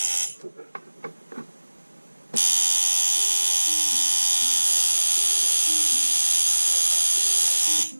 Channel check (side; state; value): both; inverted; correlation -1.00